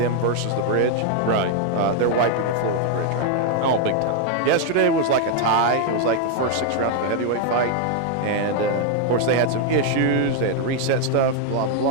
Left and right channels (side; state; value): both; different; correlation 0.00